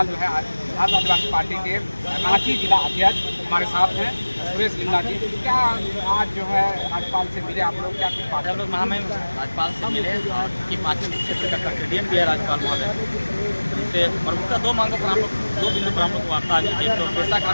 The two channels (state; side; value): inverted; both; correlation -1.00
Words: जो है भारत आदिवासी पार्टी के रांची जिला अध्यक्ष हमारे साथ हैं सुरेश लिंगा जी। क्या आज जो है राज्यपाल से मिले आप लोग, क्या कुछ बात? हम लोग महामहिम राज्यपाल से मिले और की पार्टी क्षेत्र का कस्टोडियन भी है राज्यपाल महोदय। उनसे प्रमुखतः 2 मांगों पर हम लोग 2 बिंदु पर हम लोग वार्ता हुई। एक तो पैसा